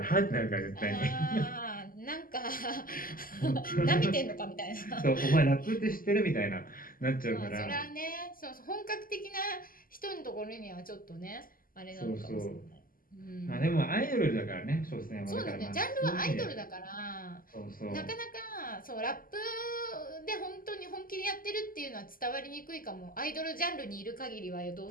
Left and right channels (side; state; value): right; late; 0.41 ms